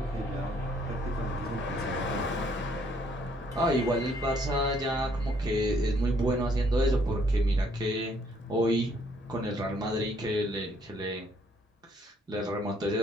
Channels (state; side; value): normal; both; correlation 0.66